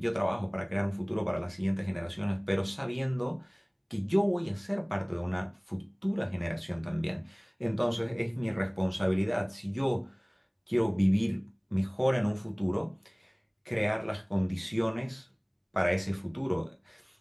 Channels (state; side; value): identical; both; correlation 1.00